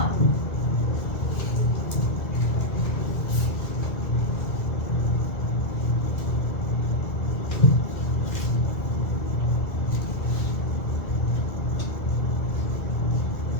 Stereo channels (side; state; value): right; late; 2.2 ms